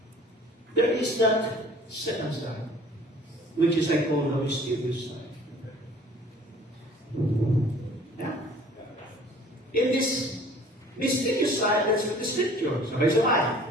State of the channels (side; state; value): both; normal; correlation 0.51